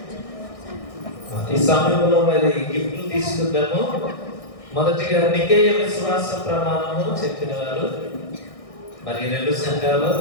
ఈ సమయంలో మరి గిఫ్ట్లు తీసుకుందాము. మొదటిగా నికేయ విశ్వాస ప్రమాణము చెప్పిన వారు మరి రెండు సంఘాలు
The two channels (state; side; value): late; right; 1.6 ms